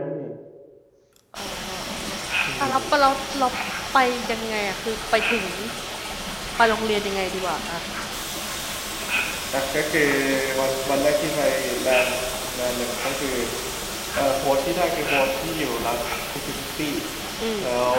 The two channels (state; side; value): identical; both; correlation 1.00